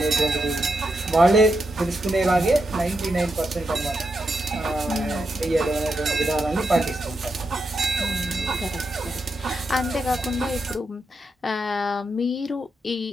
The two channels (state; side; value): normal; both; correlation 0.84